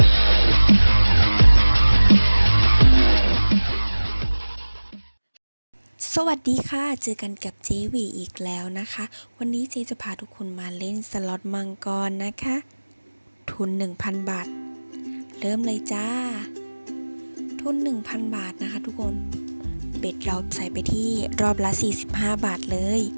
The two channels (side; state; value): both; inverted; correlation -1.00